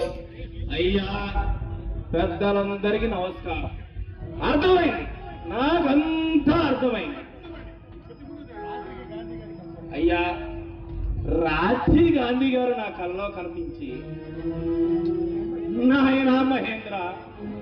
అయ్యా పెద్దలందరికీ నమస్కారం. అర్థమైంది, నాకంతా అర్థమైంది. అయ్యా రాజీవ్ గాంధీ గారు నా కళ్ళలో కనిపించి, నాయన మహేంద్ర,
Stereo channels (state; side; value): identical; both; correlation 1.00